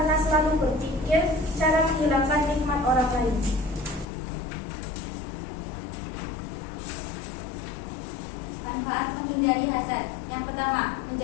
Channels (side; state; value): right; drops out; at 4.0 s